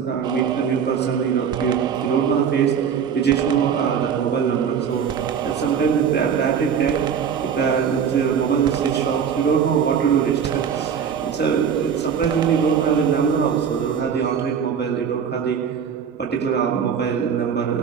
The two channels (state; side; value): quieter; left; 7.4 dB